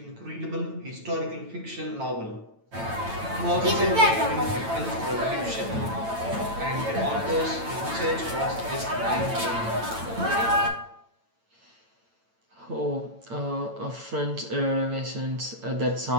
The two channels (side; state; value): left; late; 8.9 ms